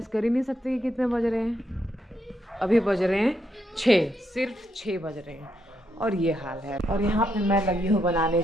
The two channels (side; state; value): both; normal; correlation 0.79